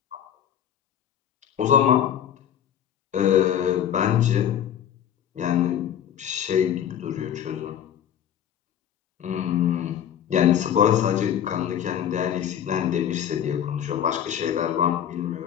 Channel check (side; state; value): right; quieter; 9.7 dB